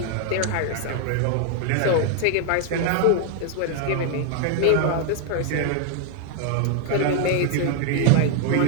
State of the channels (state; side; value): different; both; correlation 0.00